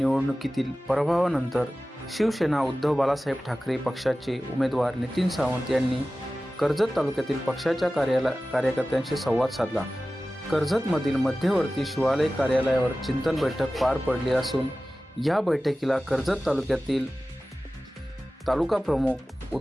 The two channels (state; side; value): normal; both; correlation 0.96